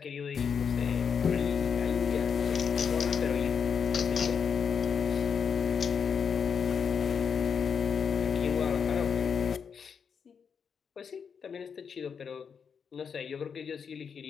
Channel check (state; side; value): quieter; right; 6.6 dB